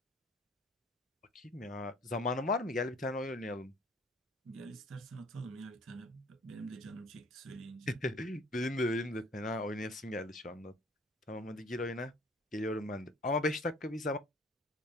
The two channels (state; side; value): normal; both; correlation 0.53